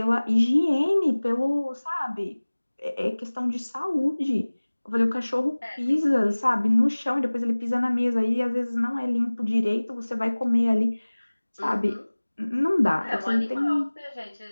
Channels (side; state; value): both; inverted; correlation -1.00